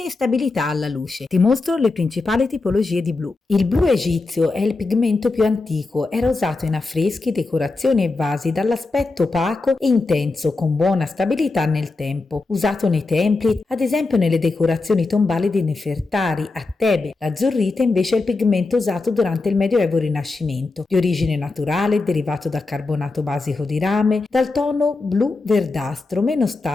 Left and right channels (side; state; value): right; quieter; 3.6 dB